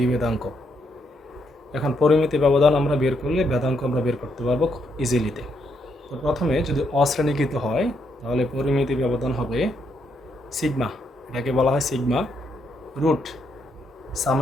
এখন পরিমিতি ব্যবধান আমরা বের করলে ভেদাঙ্ক আমরা বের করতে পারবো খুব ইজিলিতে। তো প্রথমে যদি অশ্রেণীকৃত হয় তাহলে পরিমিতি ব্যবধান হবে সিগমা, এটাকে বলা হয় sigma root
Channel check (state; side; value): normal; both; correlation 0.76